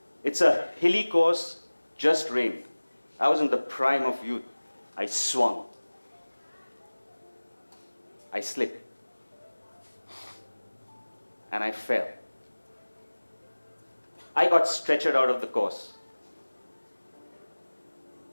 It's a hilly course, just rained. I was in the prime of youth. I swung. I slipped. And I fell. I got stretchered out of the course.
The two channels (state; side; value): inverted; both; correlation -1.00